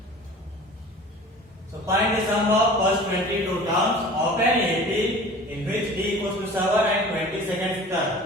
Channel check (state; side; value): normal; both; correlation 0.42